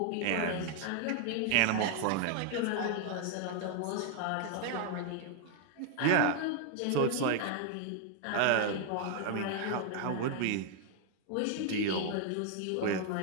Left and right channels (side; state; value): both; different; correlation 0.00